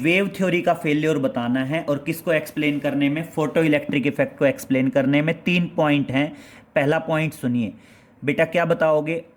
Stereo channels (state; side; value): identical; both; correlation 1.00